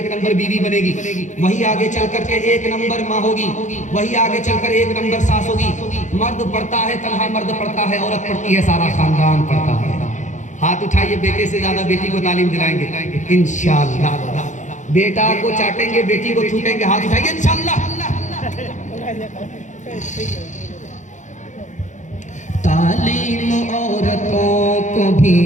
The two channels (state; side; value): late; right; 0.35 ms